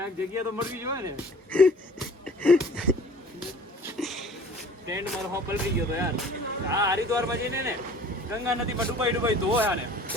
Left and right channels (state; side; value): normal; both; correlation 0.49